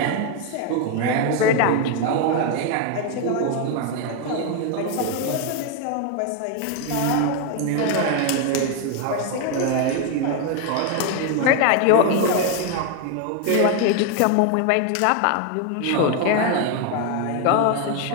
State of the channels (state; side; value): different; both; correlation 0.01